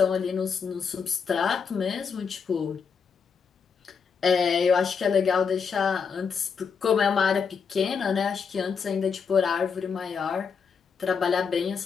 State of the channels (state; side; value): quieter; right; 6.1 dB